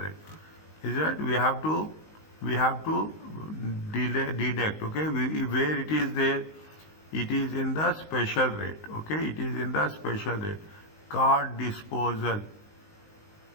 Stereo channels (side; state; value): right; late; 19 ms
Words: Is that we have to deduct. Okay, where it is there, it is in the special rate. Okay, it is in the special rate. Car disposal.